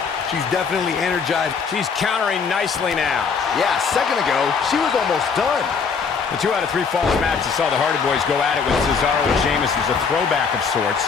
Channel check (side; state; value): right; quieter; 5.7 dB